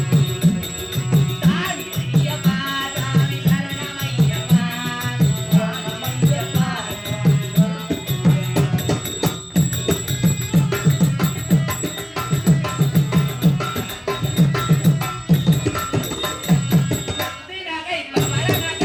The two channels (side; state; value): both; identical; correlation 1.00